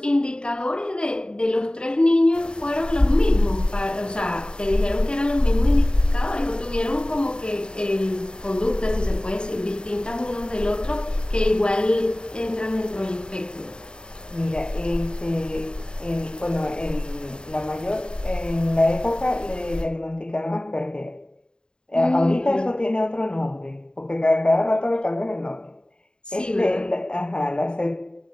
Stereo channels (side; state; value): right; late; 0.049 ms